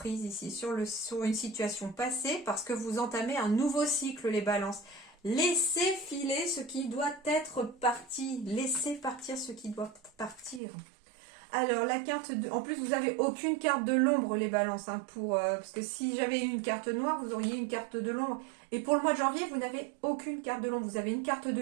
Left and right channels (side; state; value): left; drops out; at 10.6 s